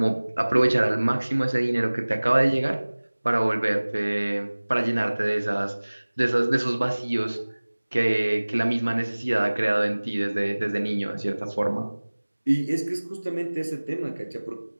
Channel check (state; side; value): inverted; both; correlation -1.00